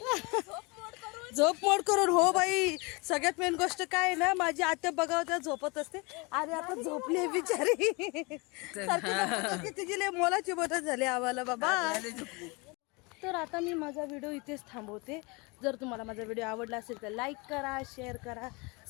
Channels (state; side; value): quieter; right; 27.8 dB